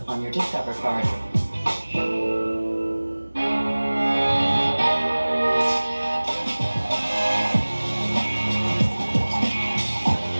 on your Discover card.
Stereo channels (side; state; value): both; inverted; correlation -1.00